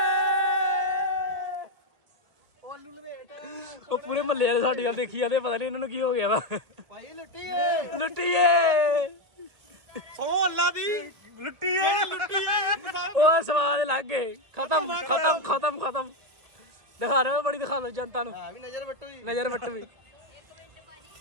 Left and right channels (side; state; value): left; late; 1.8 ms